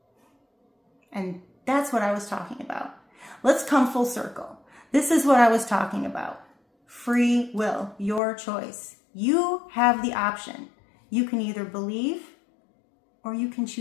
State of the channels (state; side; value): drops out; right; at 8.2 s